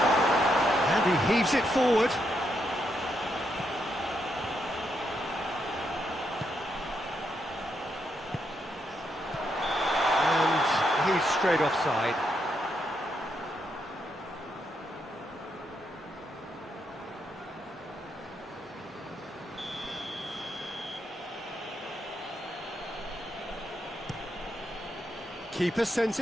And he heaves it forward. And he's straight offside. Keeper sends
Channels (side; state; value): both; normal; correlation 0.80